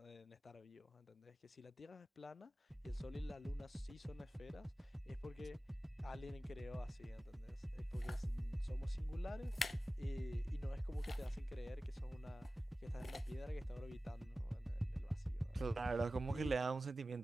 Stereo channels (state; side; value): normal; both; correlation 0.96